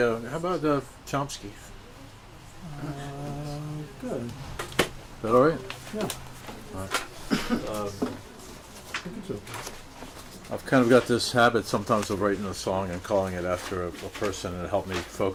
how about Chomsky? Good. Is that all right? Yeah. I've kind of got this habit sometimes of writing a song and calling it after a person, and it helped me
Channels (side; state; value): both; identical; correlation 1.00